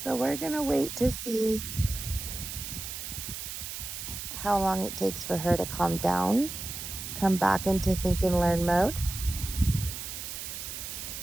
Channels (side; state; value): right; noise; hiss, 7 dB below the sound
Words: So we're gonna wait to see how long it takes for her to calm down, come back into think and learn mode.